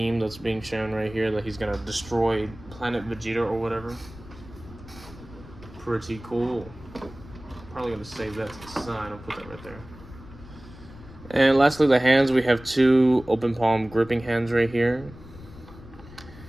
that's being shown right here, that he's gonna destroy Planet Vegeta or whatever. Pretty cool. Probably gonna save that to the side. I'll put that right there. And lastly, the hands. We have 2 open palm gripping hands right here.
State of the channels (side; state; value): left; noise; rumble, 18 dB below the sound